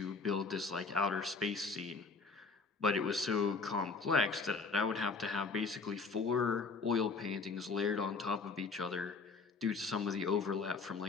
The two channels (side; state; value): right; quieter; 4.4 dB